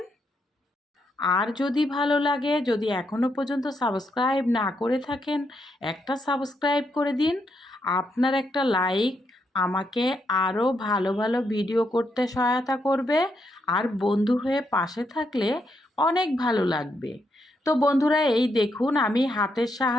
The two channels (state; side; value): normal; both; correlation 0.79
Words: আর যদি ভালো লাগে, যদি এখনও পর্যন্ত সাবস্ক্রাইব না করে থাকেন, একটা সাবস্ক্রাইব করে দিন। আপনার একটা লাইক আমাকে আরও ভালো ভালো ভিডিও করতে সহায়তা করবে। আর বন্ধু হয়ে পাশে থাকলে অনেক ভালো লাগবে। তো বন্ধুরা, এই দেখুন আমি হাতের